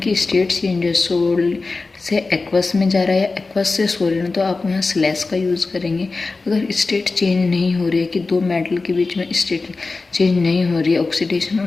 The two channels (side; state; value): right; quieter; 3.8 dB